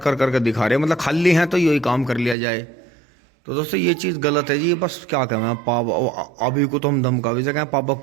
करके दिखा रहे हैं, मतलब खाली हैं तो यही काम कर लिया जाए। तो दोस्तों ये चीज़ गलत है जी। बस क्या कहें पापा, अभी को तो हम धमका भी सकें, पापा को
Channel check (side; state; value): left; drops out; at 2.4 s